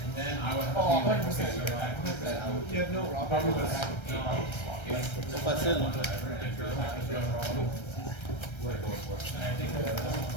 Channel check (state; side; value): late; right; 1.3 ms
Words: Oh, 100%. You have no robbery. C'est facile.